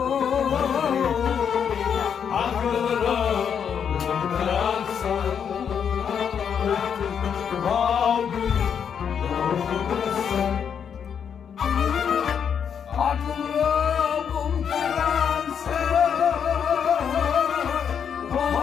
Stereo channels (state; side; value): quieter; right; 7.6 dB